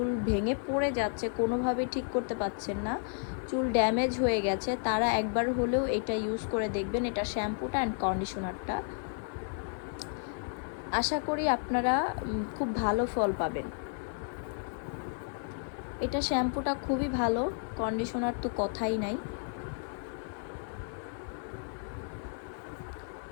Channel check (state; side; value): silent; right; 56 dB below the other